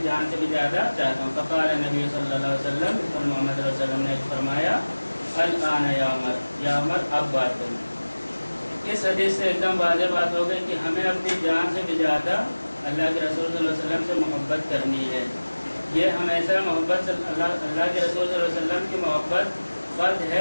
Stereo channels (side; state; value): both; inverted; correlation -1.00